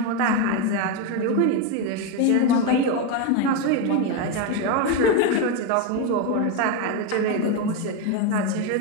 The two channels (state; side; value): different; both; correlation 0.03